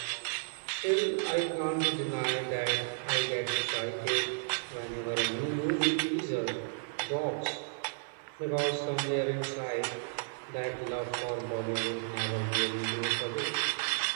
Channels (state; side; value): silent; left; 56 dB below the other